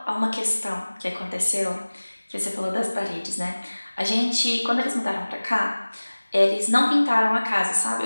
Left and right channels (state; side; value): inverted; both; correlation -1.00